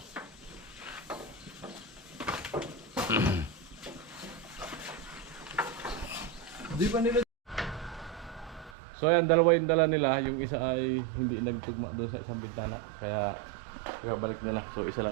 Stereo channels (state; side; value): drops out; left; at 8.8 s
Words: Di ba nila? So ayan, dalawa yung dala nila. Yung isa ay hindi nagtugma doon sa isang bintana. Kaya balik nila. So isa